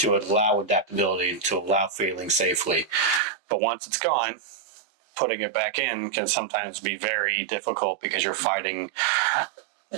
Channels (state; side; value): drops out; left; at 3.2 s